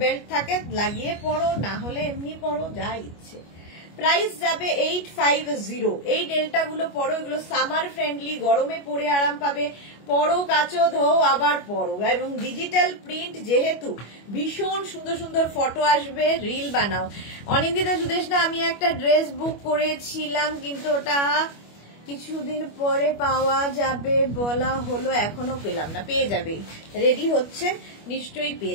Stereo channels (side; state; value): right; late; 25 ms